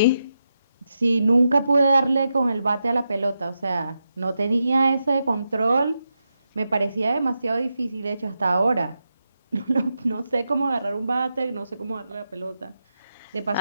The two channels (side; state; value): both; inverted; correlation -0.87